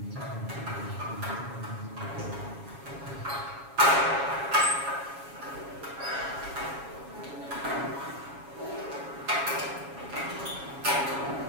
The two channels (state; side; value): late; left; 7.2 ms